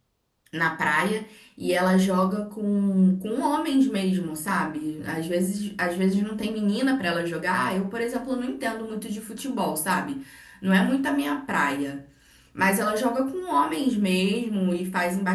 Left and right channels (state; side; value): identical; both; correlation 1.00